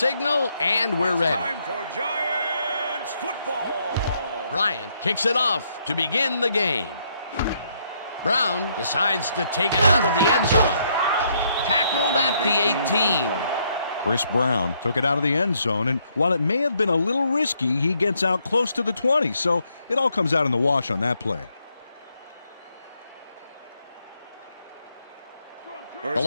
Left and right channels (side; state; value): both; inverted; correlation -0.73